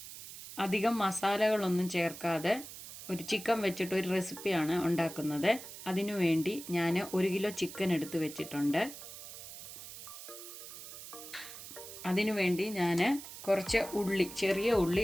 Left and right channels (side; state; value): right; noise; hiss, 12 dB below the sound